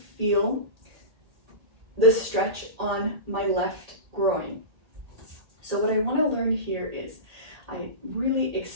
feel the stretch on my left groin. So what I wanna learn here is I really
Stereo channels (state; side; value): late; left; 1.8 ms